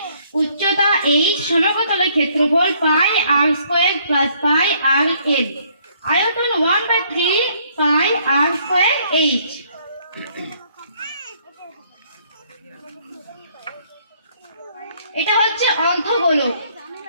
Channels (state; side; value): inverted; both; correlation -0.65